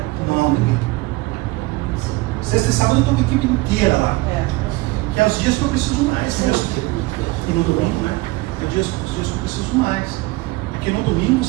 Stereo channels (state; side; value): quieter; left; 21.3 dB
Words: Não, ninguém. Sexta e sábado eu estou com a equipe inteira lá. Que é os dias que eu preciso mais. E no domingo, né? É os dias que eu preciso mais. Porque no domingo